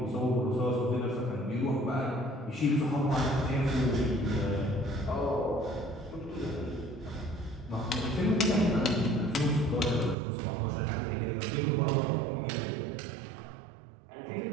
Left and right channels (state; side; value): drops out; left; at 10.2 s